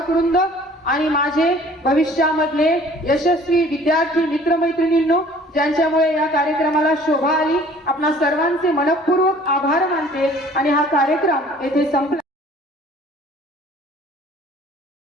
वृंद आणि माझे भविष्यामधले यशस्वी विद्यार्थी मित्रमैत्रिणींनो, ज्यांच्यामुळे या कार्यक्रमाला शोभा आली. आपणा सर्वांचे मनपूर्वक आभार मानते आणि हा कार्यक्रम येथे संपला.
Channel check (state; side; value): normal; both; correlation 0.52